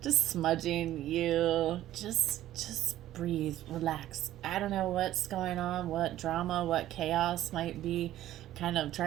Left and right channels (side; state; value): left; quieter; 13.6 dB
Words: Just smudging you. Just breathe, relax. I don't know what's going on, what drama, what chaos might be kind of